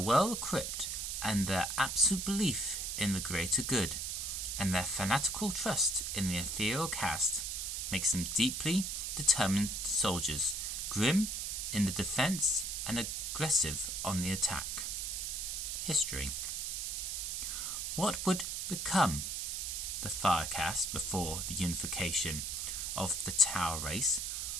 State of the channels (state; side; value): noise; right; hiss, 2 dB below the sound